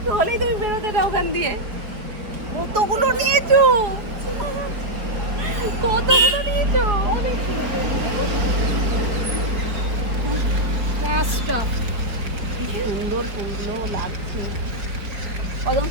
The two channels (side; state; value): left; late; 4.5 ms